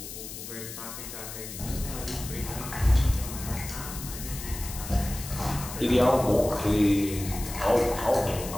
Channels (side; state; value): left; noise; hiss, 10 dB below the sound